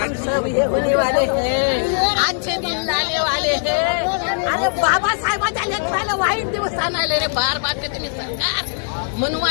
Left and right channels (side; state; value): right; silent; 66 dB below the other